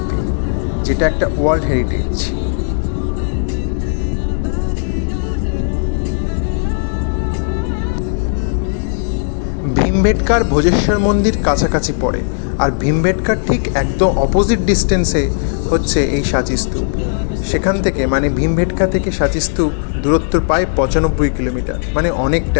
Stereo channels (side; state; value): right; silent; digital silence